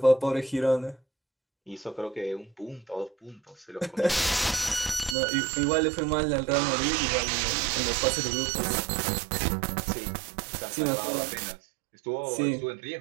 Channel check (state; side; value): drops out; left; at 5.2 s